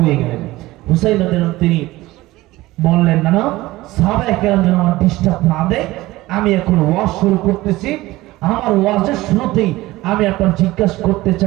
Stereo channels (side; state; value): left; quieter; 18.3 dB